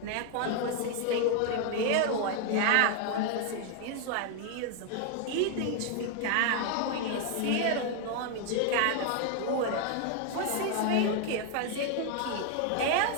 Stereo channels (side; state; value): both; different; correlation 0.00